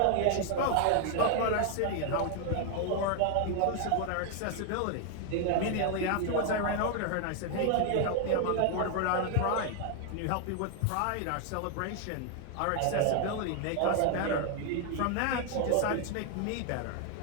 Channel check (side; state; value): both; different; correlation 0.00